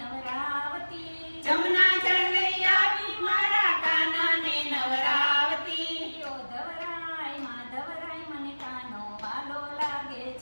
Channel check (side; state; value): both; inverted; correlation -1.00